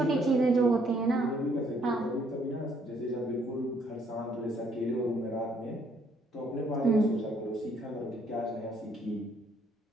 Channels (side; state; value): both; normal; correlation 0.67